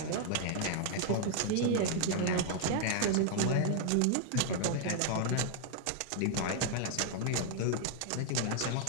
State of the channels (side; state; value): both; different; correlation 0.00